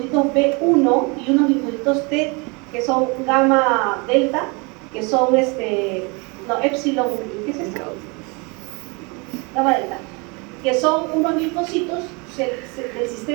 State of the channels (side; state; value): left; quieter; 29.7 dB